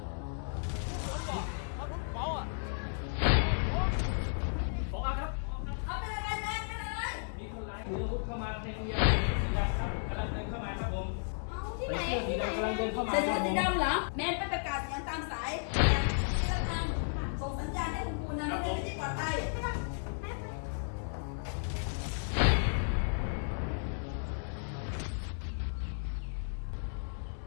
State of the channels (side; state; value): right; silent; digital silence